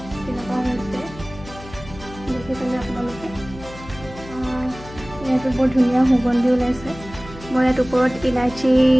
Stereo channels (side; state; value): left; noise; hum, 16 dB below the sound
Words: তেনেকুৱা হৈছে দেখিছেনে আপোনালোকে ইয়াতো বৰ ধুনীয়া সুগন্ধি ওলাইছে মই ইয়াত ওপৰত ইলাচি